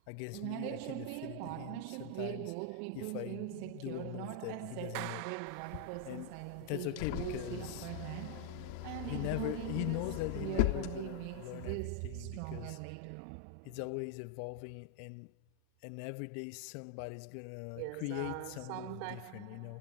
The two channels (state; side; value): different; both; correlation 0.00